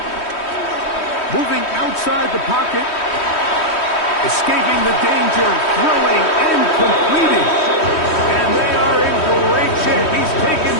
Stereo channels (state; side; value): late; right; 3.1 ms